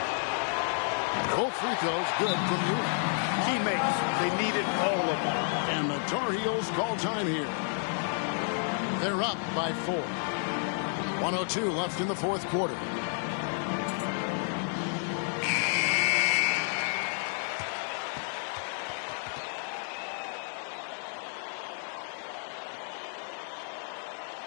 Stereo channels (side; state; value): right; silent; 56 dB below the other